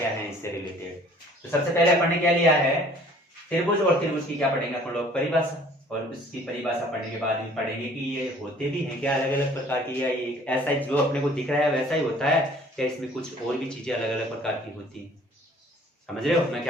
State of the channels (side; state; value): both; normal; correlation 0.53